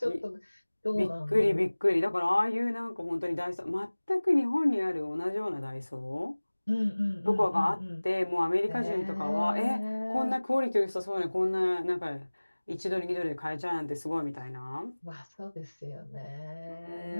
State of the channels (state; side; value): inverted; both; correlation -1.00